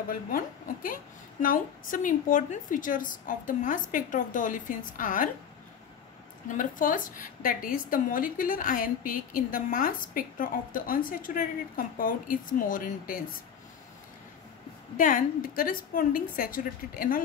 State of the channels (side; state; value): right; quieter; 7.8 dB